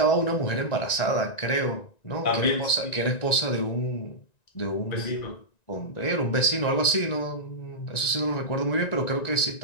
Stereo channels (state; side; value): late; right; 1.9 ms